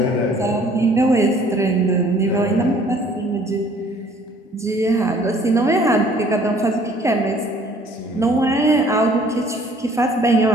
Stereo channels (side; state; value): both; normal; correlation 0.56